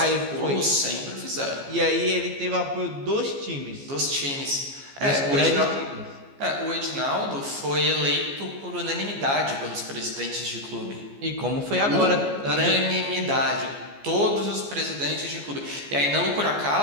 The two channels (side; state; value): left; late; 14 ms